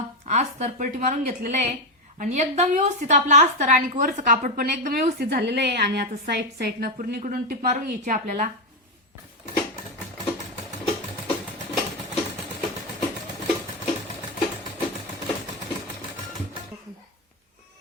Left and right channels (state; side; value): normal; both; correlation 0.08